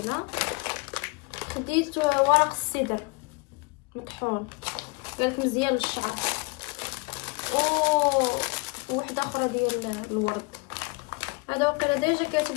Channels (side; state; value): right; quieter; 29.6 dB